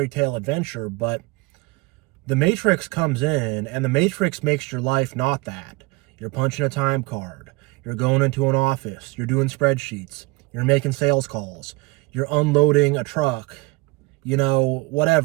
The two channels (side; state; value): left; quieter; 24.3 dB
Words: tale adventure, but the Matrix comes in, and the Matrix makes your life not that. You're punching a time card. You're going into an office. You're doing spreadsheets. You're making sales calls. You're unloading a truck.